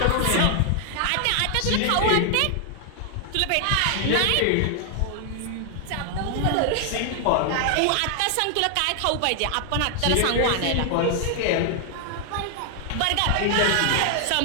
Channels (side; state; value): both; different; correlation 0.00